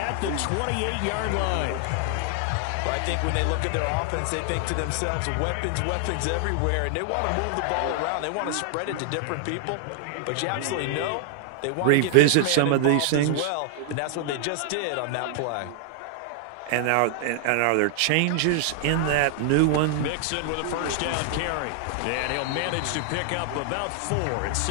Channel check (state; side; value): different; both; correlation 0.00